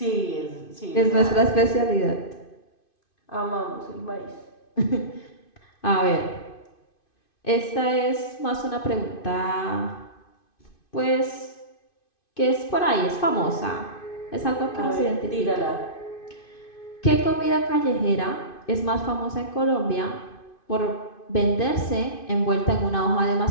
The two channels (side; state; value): right; late; 2.5 ms